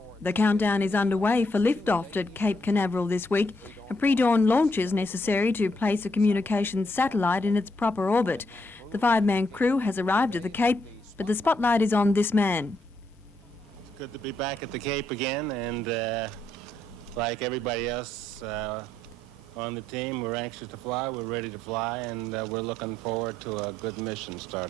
The countdown is underway for liftoff at Cape Canaveral this week. A pre-dawn launch is necessary to place a communications satellite in its proper orbit. The 5-man crew has arrived at the Cape, but the spotlight is on this man. It's good to be back at the Cape again, and like everybody else on the team, we're anxious to fly, we're ready to fly, and we're looking forward to a good mission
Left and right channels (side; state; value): both; normal; correlation 0.76